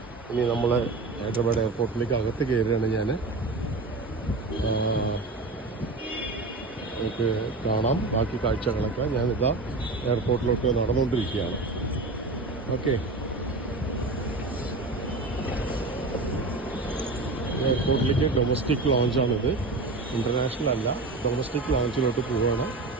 ഇനി നമ്മൾ ഹൈദരാബാദ് എയർപോർട്ടിലേക്ക് അകത്ത് കയറുകയാണ്. ഞാൻ നമുക്ക് കാണാം ബാക്കി കാഴ്ചകളൊക്കെ. ഞാനിതാ എയർപോർട്ടിലോട്ട് നടന്നുകൊണ്ടിരിക്കുകയാണ്. ഓക്കെ, എയർപോർട്ടിലേക്ക് ഡൊമസ്റ്റിക് ലോഞ്ചാണിത്, ഇൻ്റർനാഷണൽ അല്ല. ഡൊമസ്റ്റിക് ലോഞ്ചിലോട്ട് പോവുകയാണ്.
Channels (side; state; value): left; quieter; 3.2 dB